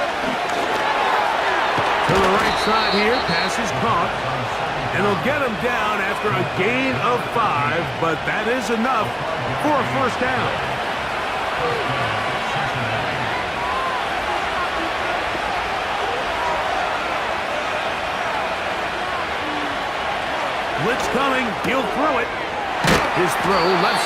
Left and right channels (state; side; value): identical; both; correlation 1.00